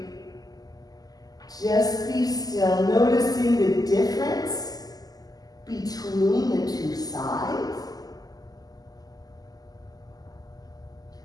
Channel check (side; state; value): right; late; 0.18 ms